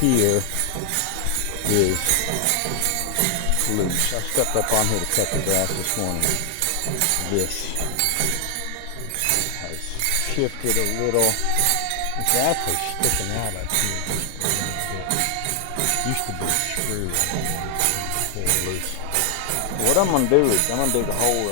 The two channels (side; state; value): both; different; correlation 0.00